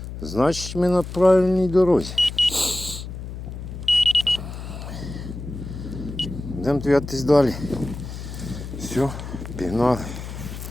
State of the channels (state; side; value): noise; left; hum, 9 dB below the sound